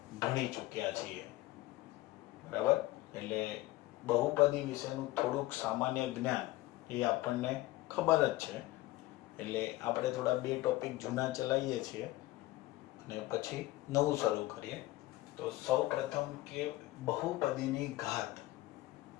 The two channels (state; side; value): quieter; right; 18.1 dB